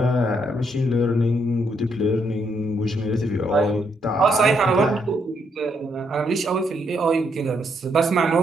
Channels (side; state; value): both; normal; correlation 0.75